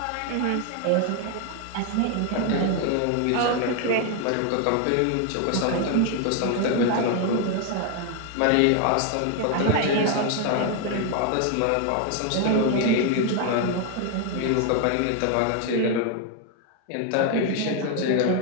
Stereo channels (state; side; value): different; both; correlation 0.00